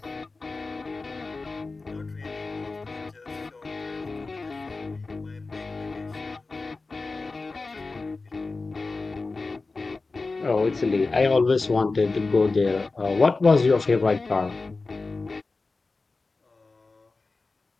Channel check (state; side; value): quieter; right; 3.7 dB